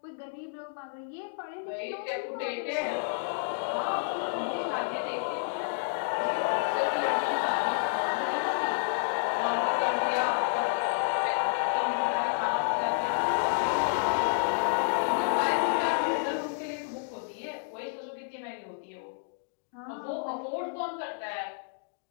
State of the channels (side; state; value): right; silent; digital silence